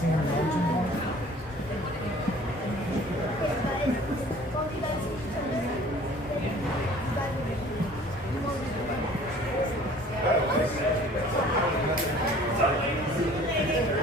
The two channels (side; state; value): both; normal; correlation 0.50